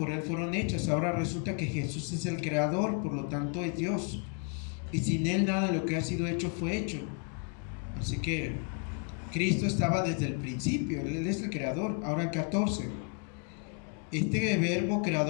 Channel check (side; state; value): right; quieter; 39.4 dB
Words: Él fueron hechas. Ahora resulta que Jesús es el creador, por lo tanto es Dios, y sin Él nada de lo que ha sido hecho fue hecho. Así que Cristo estaba desde el principio, Él es el creador. Ahora el 14: este Verbo